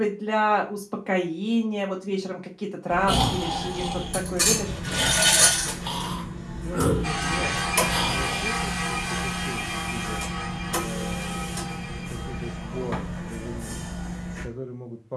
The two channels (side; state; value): both; identical; correlation 1.00